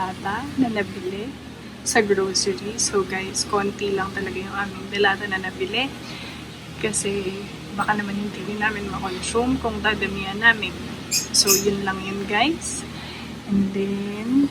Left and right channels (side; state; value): both; identical; correlation 1.00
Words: na nabili sa grocery. So, guys, konti lang talaga yung aming delata na nabili. Kasi, baka naman hindi rin namin makonsume kung dadamihan namin. So, yun lang yun, guys. And